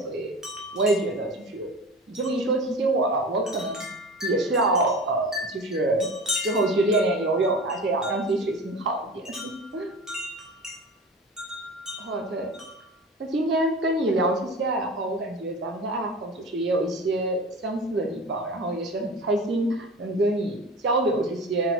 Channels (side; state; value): both; normal; correlation 0.34